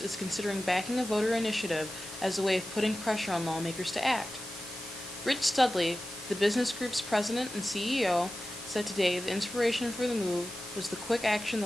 is considering backing a voter initiative as a way of putting pressure on lawmakers to act. Rich Studley, the business group's president and CEO, said today the inspiration for the move was the quick action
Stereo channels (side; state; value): both; normal; correlation 0.94